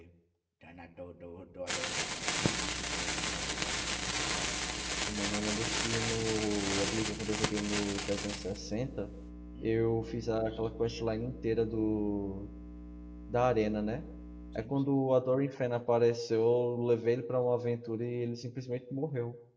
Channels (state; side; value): identical; both; correlation 1.00